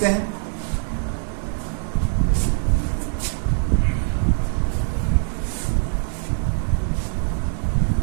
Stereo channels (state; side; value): silent; left; digital silence